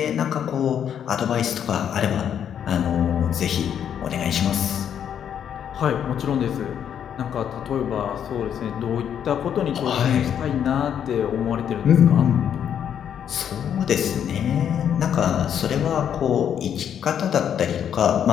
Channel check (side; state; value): right; quieter; 8.9 dB